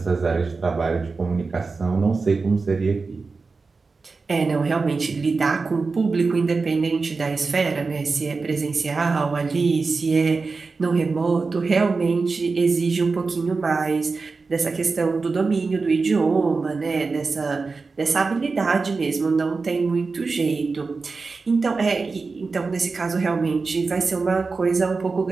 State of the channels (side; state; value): left; quieter; 4.2 dB